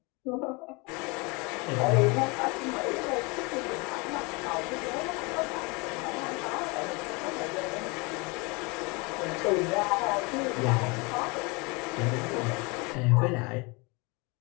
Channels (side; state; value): right; quieter; 28.1 dB